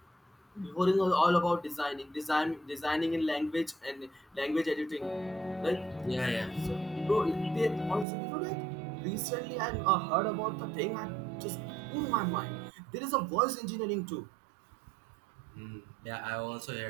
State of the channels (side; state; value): left; drops out; at 8.1 s